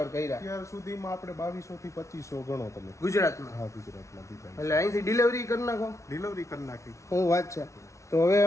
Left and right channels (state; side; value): late; right; 0.14 ms